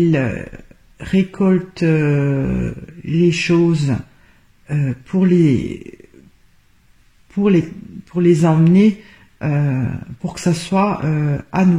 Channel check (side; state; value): both; identical; correlation 1.00